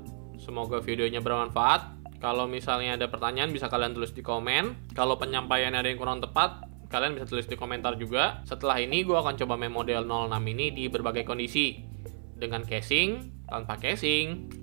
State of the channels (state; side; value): silent; left; 57 dB below the other